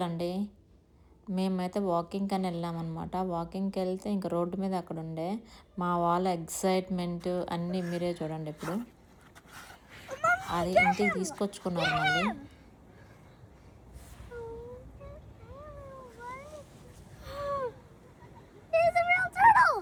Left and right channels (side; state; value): both; identical; correlation 1.00